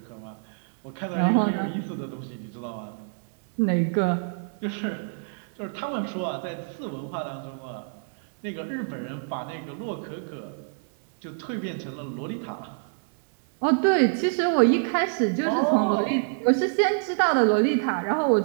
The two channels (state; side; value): silent; left; 61 dB below the other